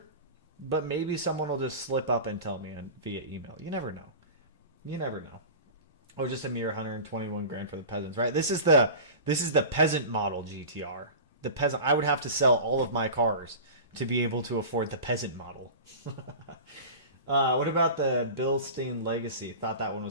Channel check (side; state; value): both; inverted; correlation -0.34